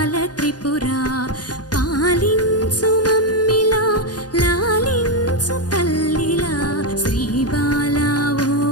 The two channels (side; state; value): right; late; 0.69 ms